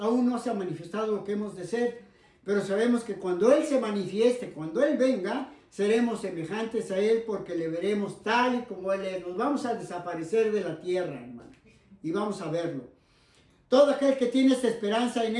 no se ha manifestado lo que hemos de ser, pero sabemos que cuando Él se manifieste, cuando Él venga, seremos semejantes a Él porque le veremos tal y como Él es. Nos vamos a desaparecer de la tierra, hermano, y vamos a verlo. Todo aquel que tiene esta esperanza en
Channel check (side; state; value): both; identical; correlation 1.00